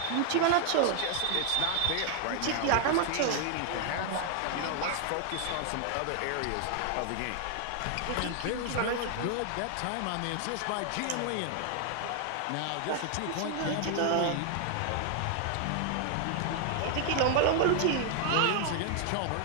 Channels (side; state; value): both; different; correlation 0.00